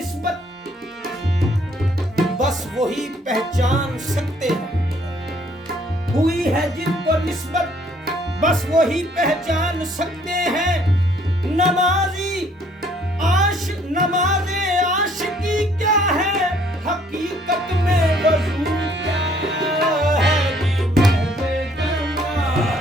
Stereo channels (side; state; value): both; normal; correlation 0.63